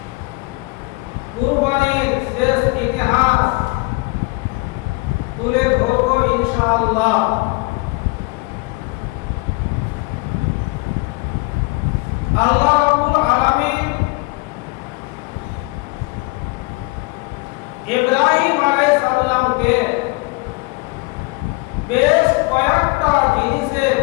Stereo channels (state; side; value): quieter; right; 26.3 dB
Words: কুরবানির শেষ ইতিহাস তুলে ধরব ইনশাআল্লাহ। আল্লাহ রাব্বুল আলামিন ইব্রাহিম আলাইহিস সালামকে বেশ কয়েকটা জিনিসে